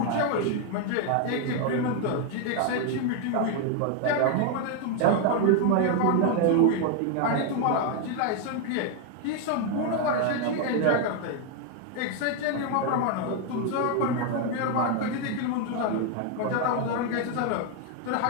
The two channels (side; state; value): both; different; correlation 0.01